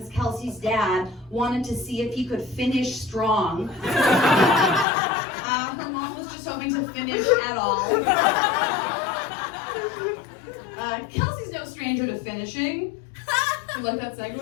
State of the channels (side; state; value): right; drops out; at 4.9 s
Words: Kelsey's dad wanted to see if he could finish strong. Her mom was just hoping to finish at all. Kelsey's no stranger to finishing. You like that segue?